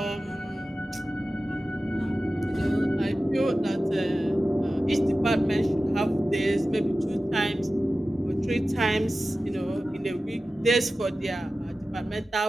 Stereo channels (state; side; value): normal; both; correlation 0.95